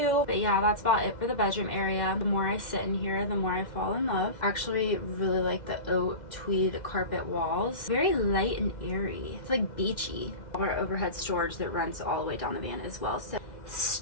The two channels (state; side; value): late; right; 2.0 ms